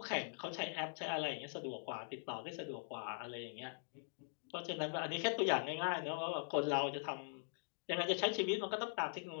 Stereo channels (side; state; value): right; silent; digital silence